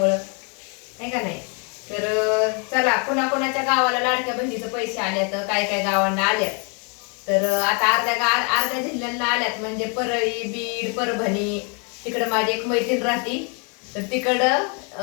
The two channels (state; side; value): quieter; right; 36.7 dB